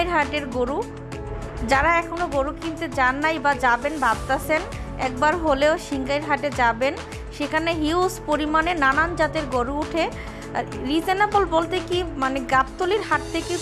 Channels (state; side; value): identical; both; correlation 1.00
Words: হাটের গরু। যারা এখনও গরু কিনতে যান নাই বা যাবেন ভাবতেছেন, একবার হলেও সিংগাইর হাটে যাবেন। সেখানে হিউজ পরিমাণে নানান জাতের গরু উঠে। রিজনেবল বলতে কি, মানে গাবতলির হাট থেকে